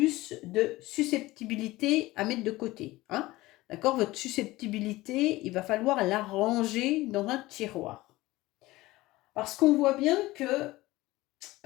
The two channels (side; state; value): right; quieter; 18.9 dB